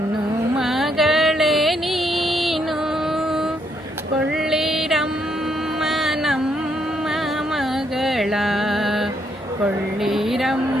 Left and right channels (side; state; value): both; normal; correlation 0.74